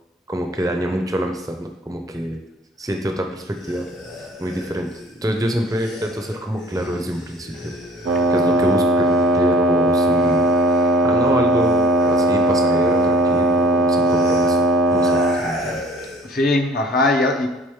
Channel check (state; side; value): normal; both; correlation 0.51